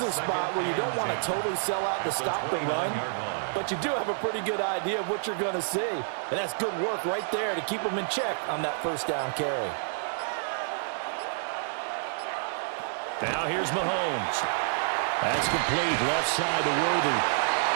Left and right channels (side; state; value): left; silent; digital silence